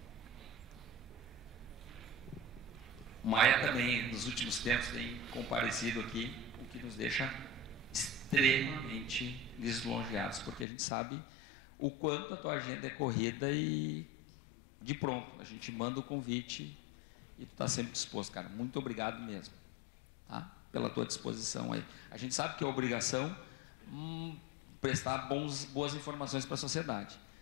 O Maia também, nos últimos tempos, tem comparecido aqui, o que nos deixa extremamente lisonjeados, porque a gente sabe o quanto a tua agenda é corrida e de pronto, a gente manda o convite e tu está sempre disposto, cara. Muito obrigado mesmo, tá? Pela tua disposição aí. A gente sabe que é obrigação prestar boas informações para a sociedade,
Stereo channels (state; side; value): drops out; right; at 10.7 s